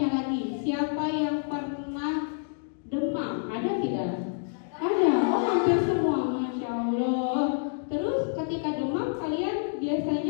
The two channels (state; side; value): silent; right; digital silence